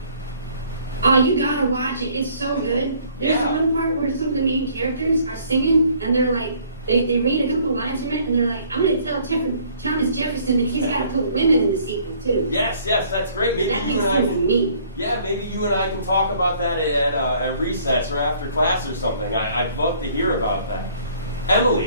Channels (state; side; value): inverted; both; correlation -0.59